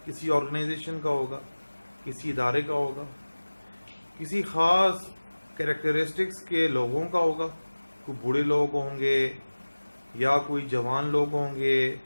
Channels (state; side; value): inverted; both; correlation -1.00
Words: کسی آرگنائزیشن کا ہوگا, کسی ادارے کا ہوگا, کسی خاص کیریکٹرسٹکس کے لوگوں کا ہوگا. کوئی بوڑھے لوگ ہوں گے یا کوئی جوان لوگ ہوں گے,